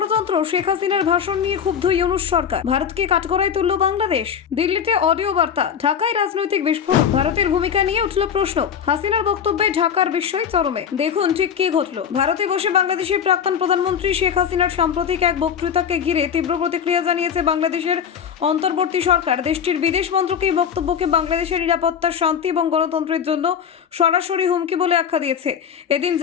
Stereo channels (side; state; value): right; quieter; 7.9 dB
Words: শেখ হাসিনার ভাষণ নিয়ে ক্ষুব্ধ ইউনূস সরকার, ভারতকে কাঠগড়ায় তুলল বাংলাদেশ। দিল্লিতে অডিও বার্তা, ঢাকায় রাজনৈতিক বিস্ফোরণ, ভারতের ভূমিকা নিয়ে উঠল প্রশ্ন। হাসিনার বক্তব্যে ঢাকার বিস্ময় চরমে। দেখুন ঠিক কি ঘটল। ভারতে বসে বাংলাদেশের প্রাক্তন প্রধানমন্ত্রী শেখ হাসিনার সাম্প্রতিক এক বক্তৃতাকে ঘিরে তীব্র প্রতিক্রিয়া জানিয়েছে বাংলাদেশের অন্তর্বর্তী সরকার। দেশটির বিদেশ মন্ত্রক এই বক্তব্যকে বাংলাদেশের নিরাপত্তা, শান্তি এবং গণতন্ত্রের জন্য সরাসরি হুমকি বলে আখ্যা দিয়েছে। এদিন